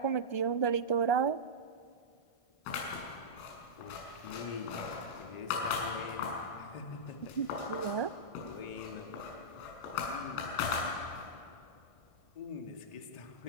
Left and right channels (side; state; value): right; late; 1.5 ms